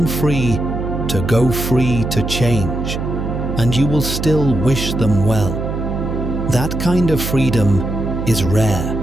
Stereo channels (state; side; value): noise; right; hum, 4 dB below the sound